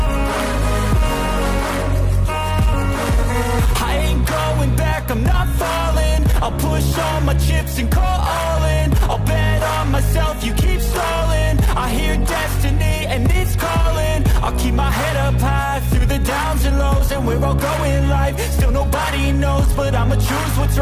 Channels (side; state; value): both; identical; correlation 1.00